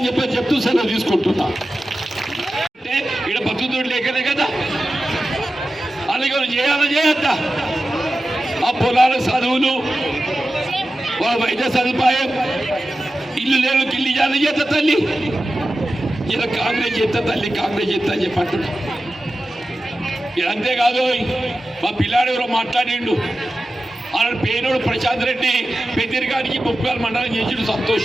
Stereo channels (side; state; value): both; normal; correlation 0.93